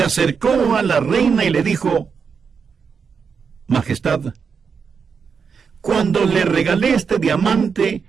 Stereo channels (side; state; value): left; quieter; 6.0 dB